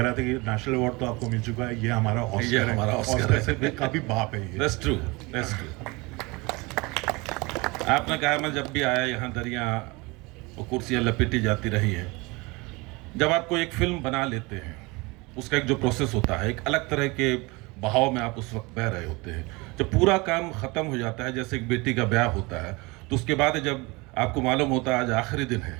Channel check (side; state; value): left; quieter; 25.2 dB